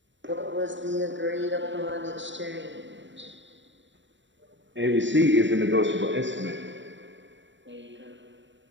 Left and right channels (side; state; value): left; late; 0.54 ms